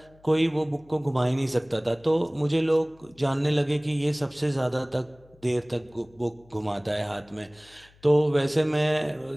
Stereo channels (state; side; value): noise; left; hum, 28 dB below the sound